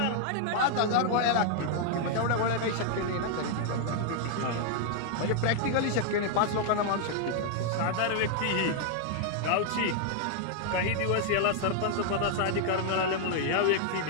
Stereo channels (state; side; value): different; both; correlation 0.00